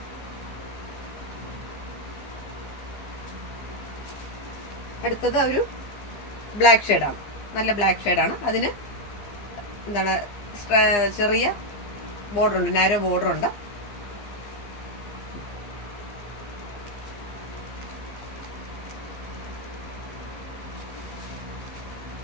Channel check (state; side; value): late; right; 15 ms